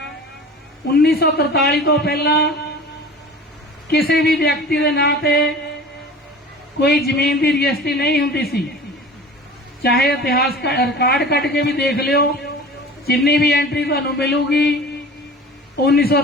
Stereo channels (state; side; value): normal; both; correlation 0.39